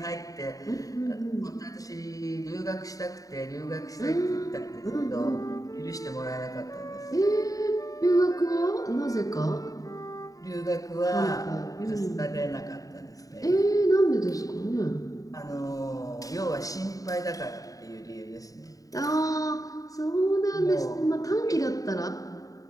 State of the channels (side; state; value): right; late; 0.17 ms